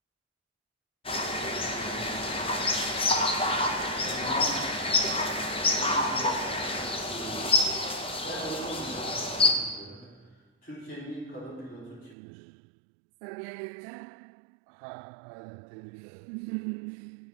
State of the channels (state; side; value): drops out; left; at 12.2 s